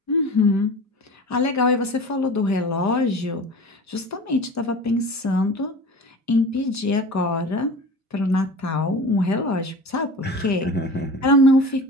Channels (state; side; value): normal; both; correlation 0.36